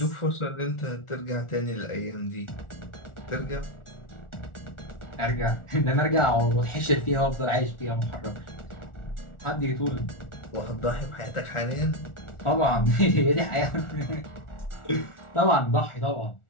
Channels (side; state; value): right; late; 1.4 ms